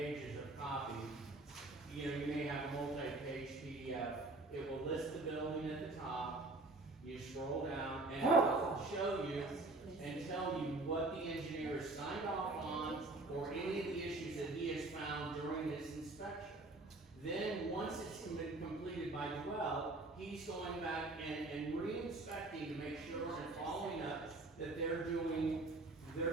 of copy. You know, you may have a multi-page PDF. It will list the building at the top. You scroll down, and it will show you and tell you what the engineer has signed off on, or any of the issues that he has found during his inspection. Then, once it's been completed by Dwell, he's going back and re-inspecting to make sure and following up that they're doing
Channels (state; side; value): quieter; left; 3.1 dB